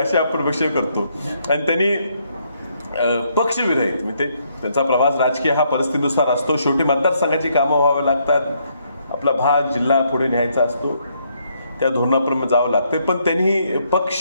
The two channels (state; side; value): inverted; both; correlation -0.73